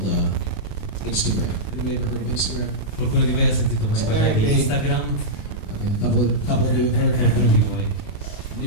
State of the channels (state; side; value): late; right; 28 ms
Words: Instagram. Anybody ever heard of Instagram? Qualcuno di voi ha sentito mai parlare di Instagram? Okay, a couple of you have heard of Qualcuno di voi?